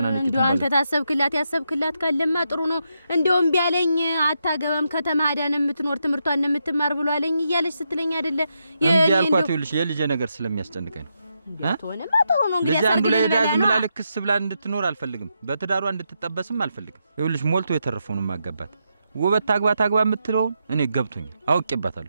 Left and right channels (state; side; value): inverted; both; correlation -0.82